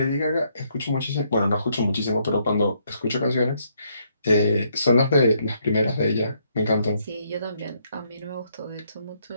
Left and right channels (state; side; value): inverted; both; correlation -0.73